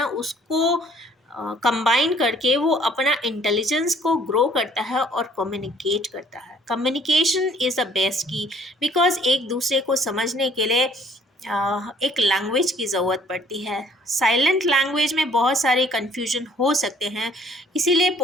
उसको कंबाइन करके वो अपना इंटेलिजेंस को ग्रो करता है और कम्युनिकेट करता है। कम्युनिकेशन इज़ द बेस्ट की, बिकॉज एक दूसरे को समझने के लिए एक लैंग्वेज की ज़रूरत पड़ती है। साइलेंट लैंग्वेज में बहुत सारे कन्फ्यूजन हो सकते हैं, इसीलिए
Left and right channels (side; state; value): both; normal; correlation 0.58